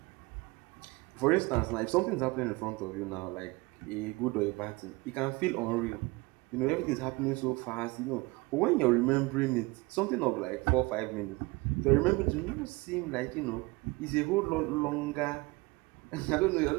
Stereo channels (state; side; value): quieter; left; 24.2 dB